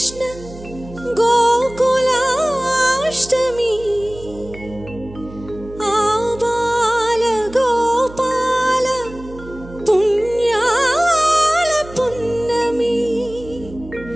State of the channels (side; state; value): right; noise; hum, 17 dB below the sound